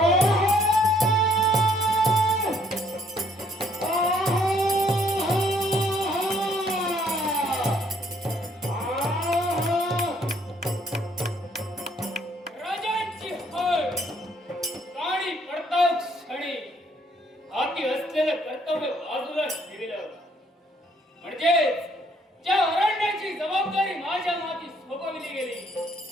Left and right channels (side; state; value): both; normal; correlation 0.65